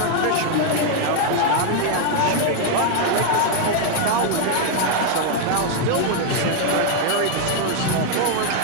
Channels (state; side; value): different; both; correlation 0.00